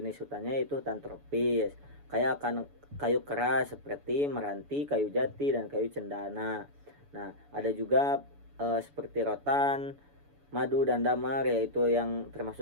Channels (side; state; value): left; late; 7.0 ms